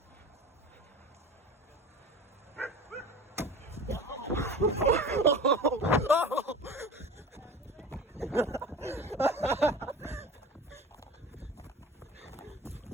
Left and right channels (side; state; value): both; normal; correlation 0.35